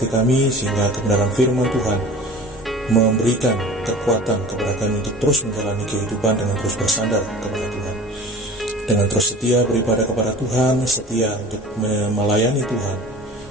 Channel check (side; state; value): both; normal; correlation 0.41